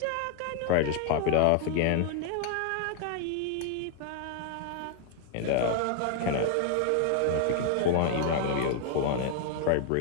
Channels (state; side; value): different; both; correlation 0.00